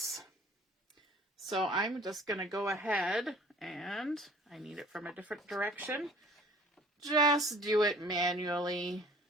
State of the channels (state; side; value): normal; both; correlation 0.49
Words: So I'm just going to go ahead, and I need it from a different direction. Just do it manually.